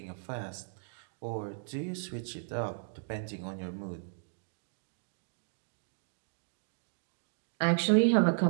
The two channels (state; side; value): silent; left; digital silence